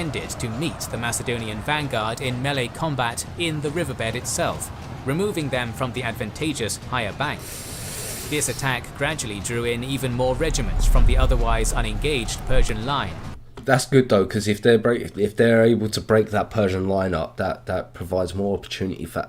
to meet the Macedonian vanguard in melee combat in the riverbed itself, removing them from the advantageous higher bank. This attack gradually drew in even more regiments from the otherwise unengaged Persian line. That's good though, because if they're able to break that Persian line up, that provides more opportunity for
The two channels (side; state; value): both; identical; correlation 1.00